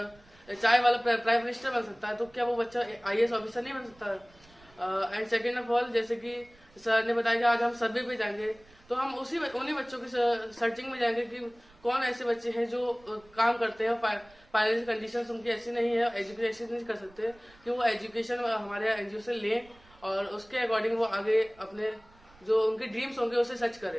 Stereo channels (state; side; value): noise; right; rumble, 27 dB below the sound